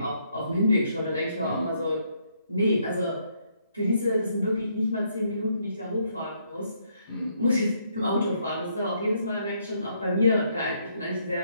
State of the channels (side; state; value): both; inverted; correlation -0.72